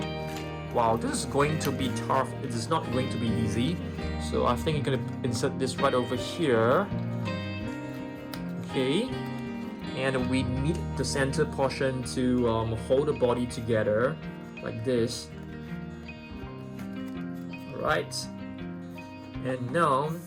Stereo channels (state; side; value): identical; both; correlation 1.00